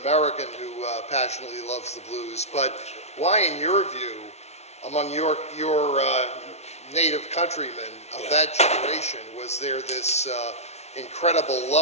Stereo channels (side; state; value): right; late; 0.31 ms